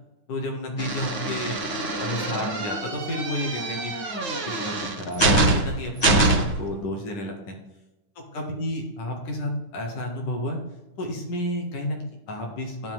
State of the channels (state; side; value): late; right; 9.6 ms